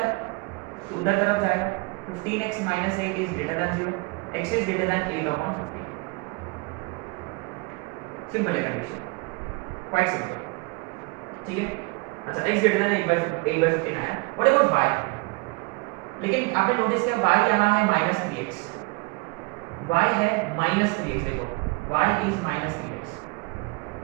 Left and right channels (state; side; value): quieter; left; 28.2 dB